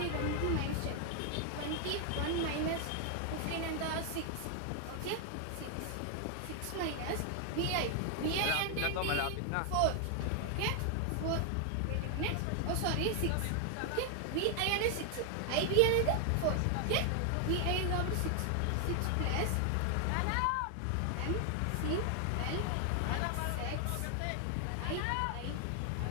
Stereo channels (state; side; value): different; both; correlation 0.00